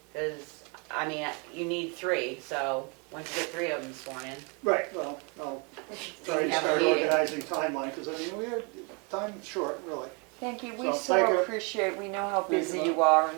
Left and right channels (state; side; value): quieter; left; 32.9 dB